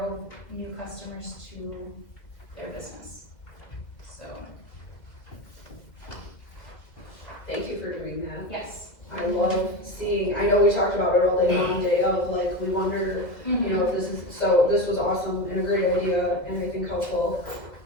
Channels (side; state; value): right; late; 2.0 ms